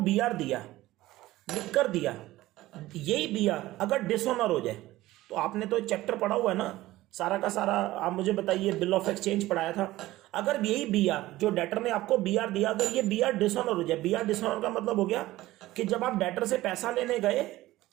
दिया, लिख कर दिया, यही BR अगर डिसऑनर हो जाए, तो आपने तो चैप्टर पढ़ा हुआ है ना सारा का सारा, आप मुझे बताइए, बिल ऑफ एक्सचेंज पढ़ाया था। अगर यही BR, जो डेटर ने आपको BR दिया, अगर ये BR डिसऑनर हो जाए, BR डिसऑनर का मतलब हो गया कि जब आप डेटर से पैसा लेने गए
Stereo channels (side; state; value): left; quieter; 16.9 dB